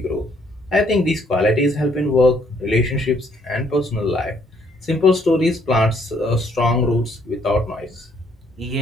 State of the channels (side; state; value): both; normal; correlation 0.67